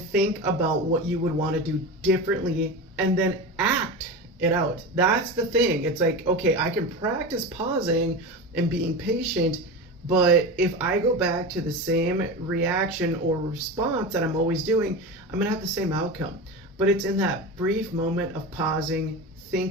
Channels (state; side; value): normal; both; correlation 0.25